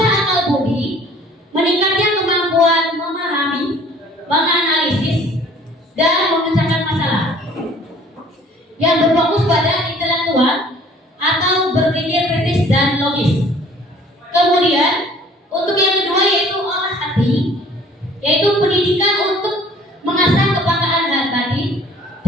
akal budi, meningkatkan kemampuan memahami, menganalisis, dan memecahkan masalah yang berfokus pada intelektual atau berpikir kritis dan logis. Kemudian untuk yang kedua yaitu olah hati, yaitu pendidikan untuk mengasah kepekaan hati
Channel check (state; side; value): normal; both; correlation 0.53